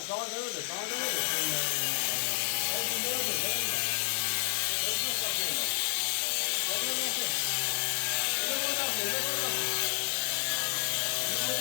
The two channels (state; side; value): silent; right; 57 dB below the other